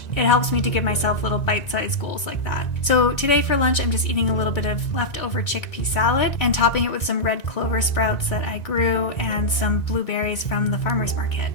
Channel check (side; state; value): right; late; 1.9 ms